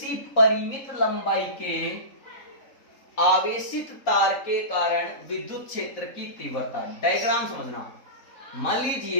परिमित लंबाई के आवेशित तार के कारण विद्युत क्षेत्र की तीव्रता। डायग्राम समझना। मान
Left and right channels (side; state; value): right; late; 3.8 ms